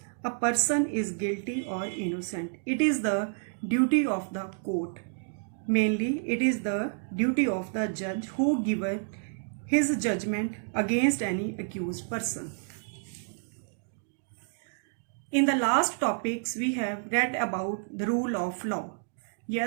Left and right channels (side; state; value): left; silent; digital silence